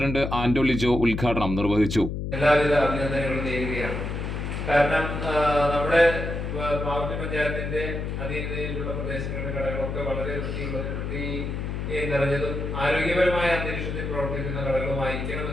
ആന്റോ ലിജോ ഉദ്ഘാടനം നിർവഹിച്ചു. എല്ലാവിധ അഭിനന്ദനങ്ങളും നേരുകയാണ്. കാരണം നമ്മുടെ പാവർട്ടി പഞ്ചായത്തിന്റെ അധീനതയിലുള്ള പ്രദേശങ്ങളിലെ കടകളൊക്കെ വളരെ വൃത്തി നിറഞ്ഞതും ആരോഗ്യപരമായ അന്തരീക്ഷത്തിൽ പ്രവർത്തിക്കുന്ന ഘടകമായിരിക്കണം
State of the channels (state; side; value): noise; left; hum, 4 dB below the sound